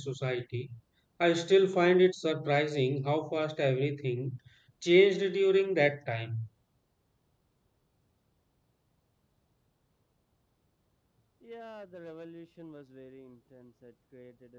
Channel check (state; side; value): identical; both; correlation 1.00